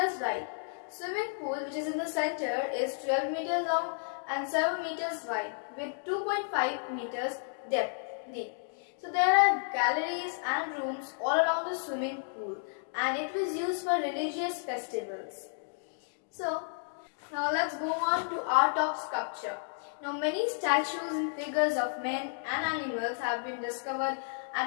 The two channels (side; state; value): right; silent; digital silence